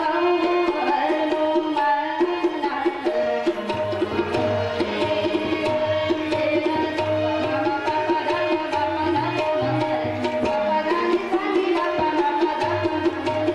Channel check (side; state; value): both; identical; correlation 1.00